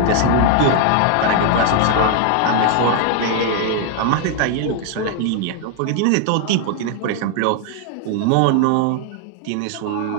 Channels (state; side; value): different; both; correlation 0.00